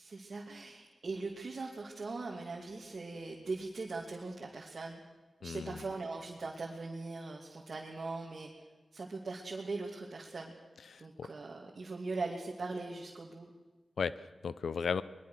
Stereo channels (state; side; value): normal; both; correlation 0.88